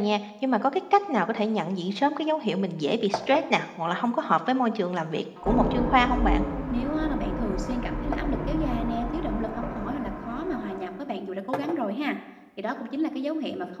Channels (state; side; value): identical; both; correlation 1.00